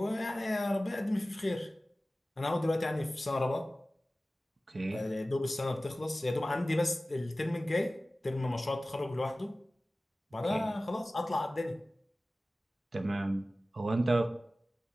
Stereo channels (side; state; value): both; normal; correlation 0.97